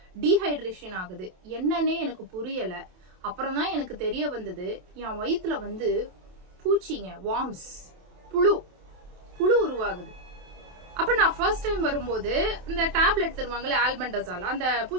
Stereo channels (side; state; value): left; late; 27 ms